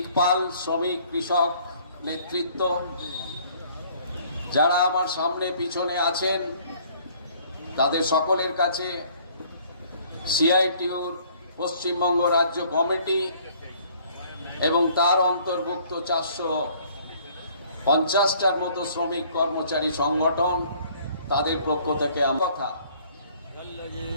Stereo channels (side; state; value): both; inverted; correlation -0.58